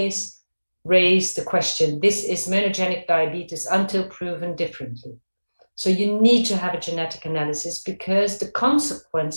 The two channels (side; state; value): both; inverted; correlation -1.00